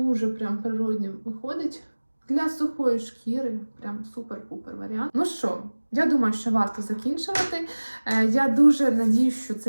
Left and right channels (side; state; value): both; inverted; correlation -1.00